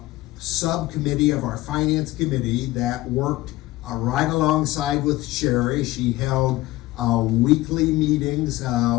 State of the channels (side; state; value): right; quieter; 18.0 dB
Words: subcommittee of our finance committee that worked right alongside with Sherry. She held weekly meetings